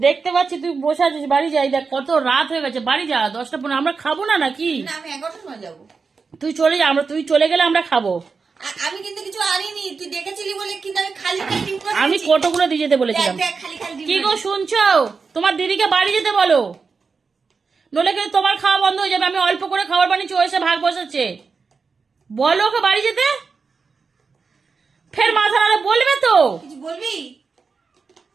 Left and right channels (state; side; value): quieter; left; 4.9 dB